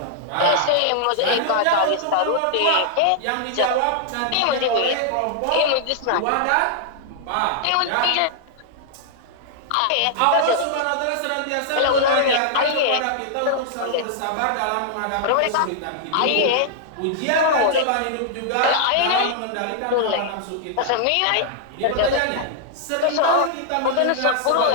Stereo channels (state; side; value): different; both; correlation -0.01